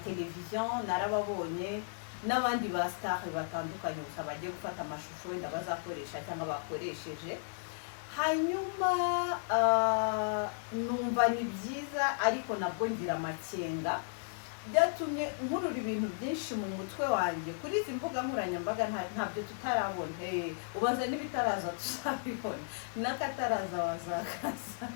narababonye, n'abandi ba star batandukanye gusa bagiye gufata amashusho wenda bazakoresha cyangwa bakoresheje. Hanyuma numva ni byiza, ariko nabwo ngira amakenga, byatumye nkurura ibintu byinshi mu mutwe wanjye kuri izi mbuga nkoranyambaga. Ntabyo tutarabona, ubanza n'ibitaraza tuzabibona, n'akataraza wazakaza.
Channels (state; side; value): silent; right; digital silence